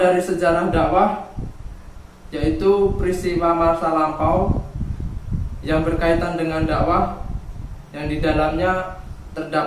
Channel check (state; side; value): identical; both; correlation 1.00